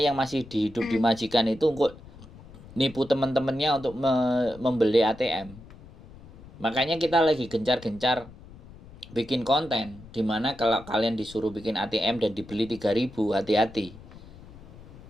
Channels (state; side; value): noise; left; rumble, 19 dB below the sound